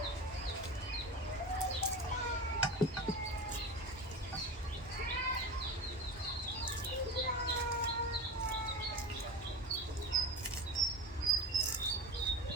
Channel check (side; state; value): both; normal; correlation 0.28